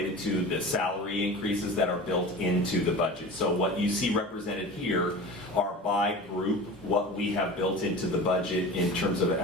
to the salary increases that are built into the budget. So what you see represented here are by group what we have built into the budget in terms of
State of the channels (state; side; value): normal; both; correlation 0.34